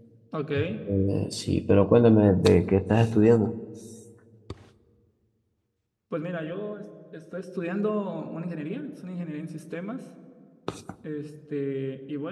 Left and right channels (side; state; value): both; identical; correlation 1.00